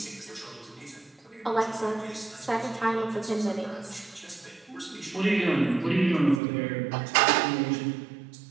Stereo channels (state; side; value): drops out; left; at 6.4 s